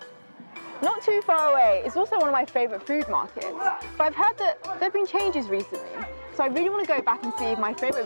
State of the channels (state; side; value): inverted; both; correlation -1.00